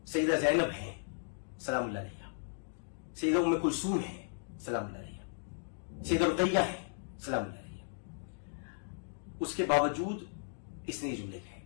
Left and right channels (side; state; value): right; silent; digital silence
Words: सैयदा ज़ैनब है सलामुल्लाह अलैहा, सैयदा उम्मे कुलसूम है सलामुल्लाह अलैहा, सैयदा रुक़ैया है सलामुल्लाह अलैहा। उसके बावजूद इसने ये जुमले कहे।